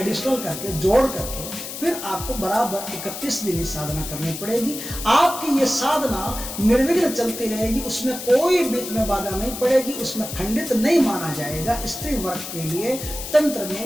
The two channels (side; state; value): left; noise; hiss, 8 dB below the sound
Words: करके जोड़ करके फिर आपको बराबर 31 दिन ही साधना करनी पड़ेगी। आपकी ये साधना निर्विघ्न चलती रहेगी, उसमें कोई बीच में बाधा नहीं पड़ेगी, उसमें खंडित नहीं माना जाएगा। स्त्री वर्ग के लिए तंत्र